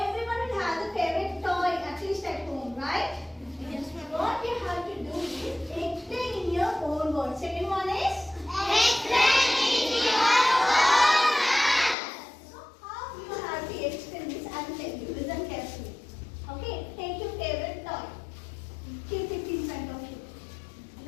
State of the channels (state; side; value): drops out; right; at 12.0 s